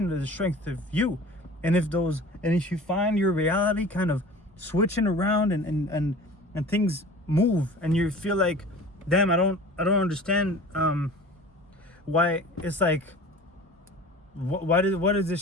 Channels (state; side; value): normal; both; correlation 0.41